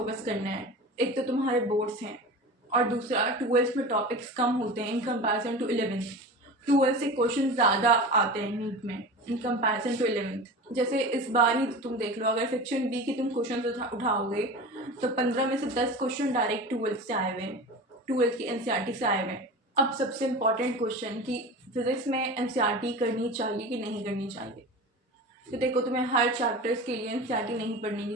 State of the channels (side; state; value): both; normal; correlation 0.32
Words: करना है। एक तो तुम्हारे बोर्ड्स हैं, और दूसरा 12 में टॉपिक्स कम होते हैं इन कंपैरिजन टू 11। 12 से क्वेश्चन ज़्यादा आते हैं नीट में इन कंपैरिजन टू 11। जैसे इस बार ही तुम देख लो, अगर सेक्शन बी की तुम क्वेश्चन उठाओगे तो 15 में से 10 क्वेश्चन डायरेक्ट 12 से आए हुए हैं, 12 की एनसीईआरटी से आए हुए हैं। अब सबसे इम्पॉर्टेंट क्वेश्चन कि फिजिक्स में एनसीईआरटी करनी चाहिए कि नहीं करनी चाहिए। तो देखो, तुम्हें हर चैप्टर्स के लिए एनसीईआरटी नहीं पढ़ने की